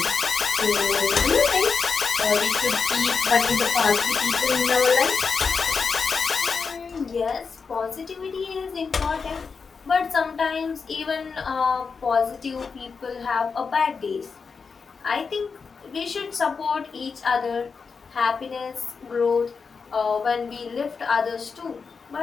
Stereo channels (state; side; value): quieter; right; 5.3 dB